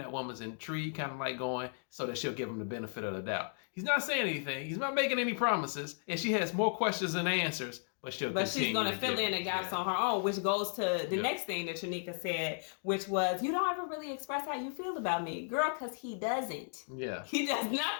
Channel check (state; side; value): silent; right; 55 dB below the other